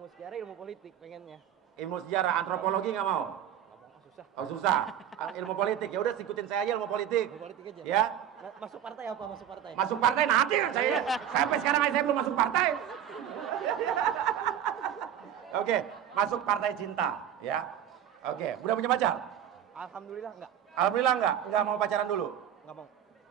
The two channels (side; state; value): left; quieter; 10.0 dB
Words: sejarah, ilmu politik pengennya. Ilmu sejarah, antropologi nggak mau? Susah. Oh susah. Ilmu politik. Ya udah ikutin saya aja ilmu politik. Ilmu politik aja. Ya. Masuk partai apa? Masuk partai. Masuk partai nanti saya. Sampai sekarang aja saya belum masuk partai. Oke, masuk partai cinta, ya. Oke, udah punya pacar? Alhamdulillah enggak. Alhamdulillah enggak mau pacaran dulu? Enggak mau.